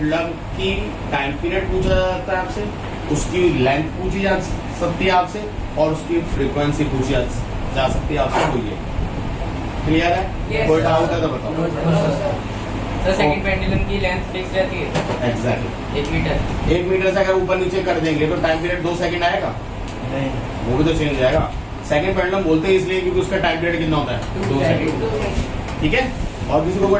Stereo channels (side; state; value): both; identical; correlation 1.00